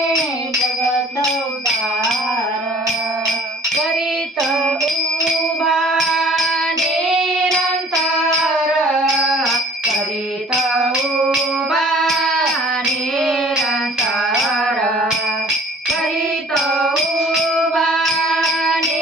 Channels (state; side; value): normal; both; correlation 0.52